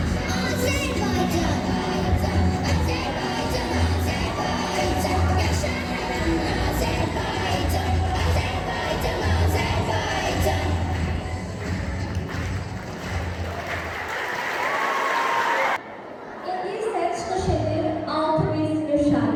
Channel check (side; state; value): both; identical; correlation 1.00